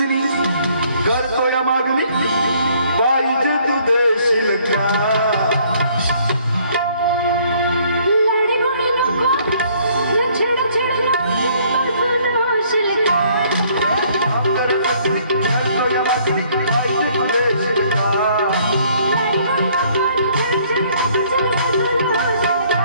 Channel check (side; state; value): both; inverted; correlation -0.62